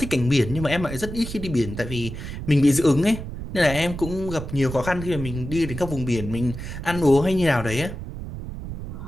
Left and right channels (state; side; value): noise; right; rumble, 9 dB below the sound